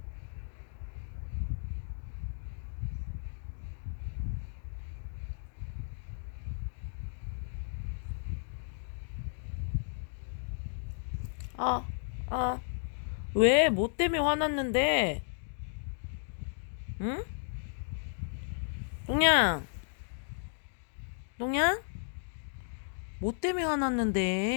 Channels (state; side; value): silent; right; digital silence